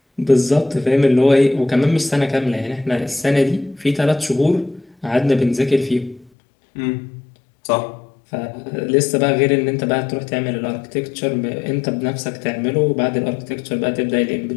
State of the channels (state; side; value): drops out; right; at 6.3 s